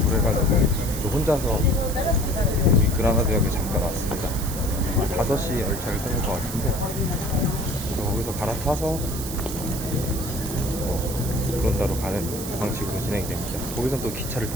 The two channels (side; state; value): right; noise; hiss, 8 dB below the sound